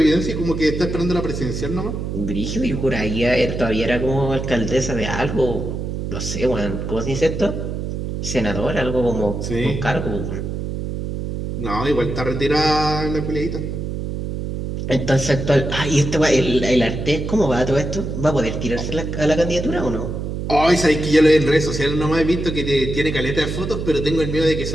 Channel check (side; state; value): right; noise; hum, 4 dB below the sound